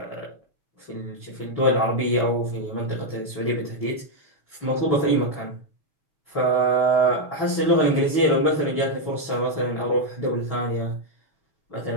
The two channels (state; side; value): late; right; 6.1 ms